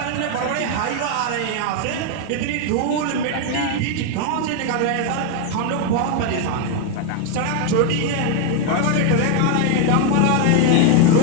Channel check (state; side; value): different; both; correlation 0.01